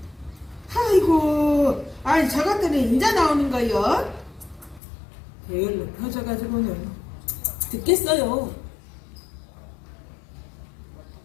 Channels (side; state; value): right; drops out; at 4.8 s